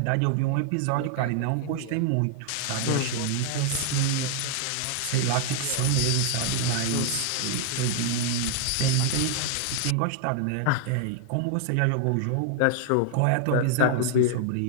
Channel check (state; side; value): different; both; correlation 0.00